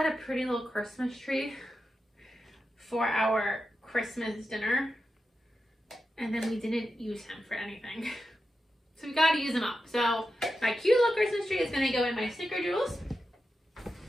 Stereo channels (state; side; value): normal; both; correlation 0.90